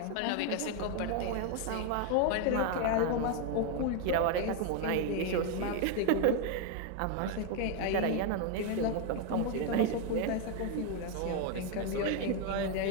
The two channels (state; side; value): different; both; correlation 0.01